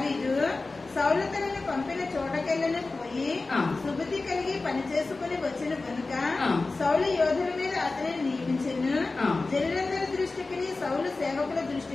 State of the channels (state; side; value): quieter; right; 3.5 dB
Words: సౌలు తనను పంపిన చోటకెళ్ళను పోయి సుబుద్ధి కలిగి పని చేసుకుని వచ్చిన కనుక సౌలు యోధుల మీద అతనిని నియమించెను. జనులందరి దృష్టికి, సౌలు సేవకుల